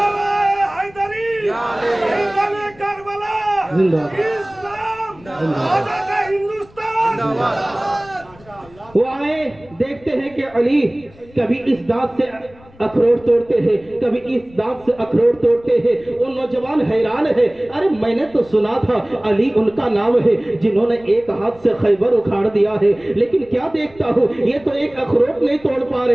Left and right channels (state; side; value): noise; left; rumble, 25 dB below the sound